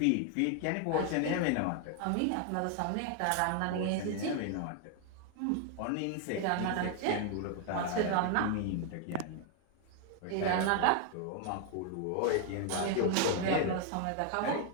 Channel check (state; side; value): different; both; correlation 0.00